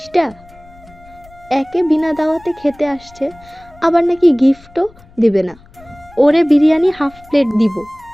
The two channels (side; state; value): left; noise; rumble, 25 dB below the sound